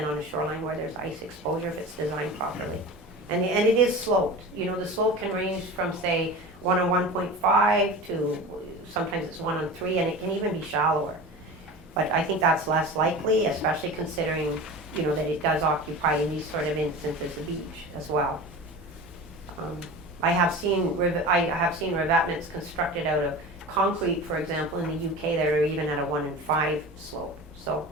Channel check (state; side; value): normal; both; correlation 0.33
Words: on a shoreline where there's ice exposure if it's designed properly. And it is sloped. You know, the slope can range from, say, 1 on 1.5 to sometimes it's 1 on 3, and it can even be shallower. But I think that's less likely, especially considering, you know, that it does occupy in these sort of instances the beach as well. I have seen revetments constructed out of concrete, for example, in the UK that are even at a 1 in 5 slope. So